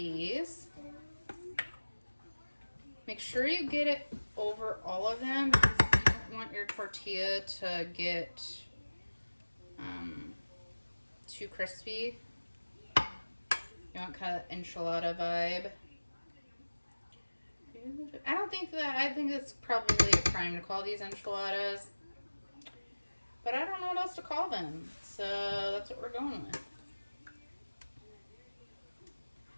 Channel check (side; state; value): both; inverted; correlation -1.00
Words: Make sure you get it over all of them because you don't want your tortilla to get too crispy. You want kind of enchilada vibe. I think it's probably a crime to call these enchiladas. but I don't know what else to call them. So that's what we're going with.